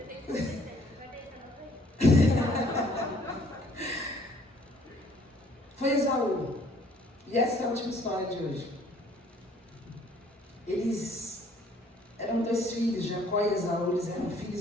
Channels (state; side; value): normal; both; correlation 0.60